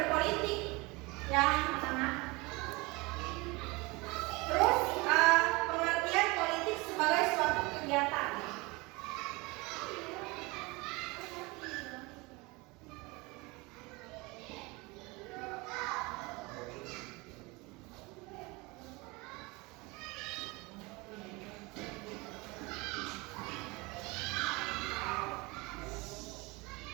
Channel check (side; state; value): left; quieter; 24.9 dB